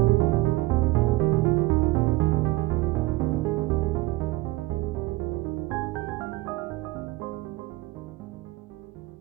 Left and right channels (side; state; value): left; quieter; 19.0 dB